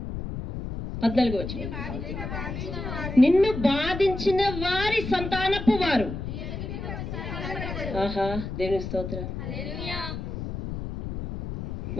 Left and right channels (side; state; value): left; noise; rumble, 6 dB below the sound